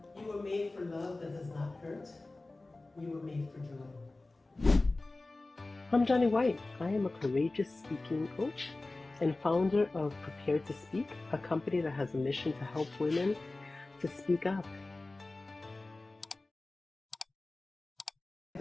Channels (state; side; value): quieter; right; 3.1 dB